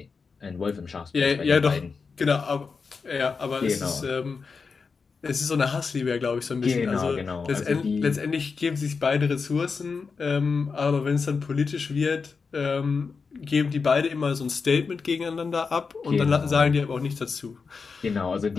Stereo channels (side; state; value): right; quieter; 5.0 dB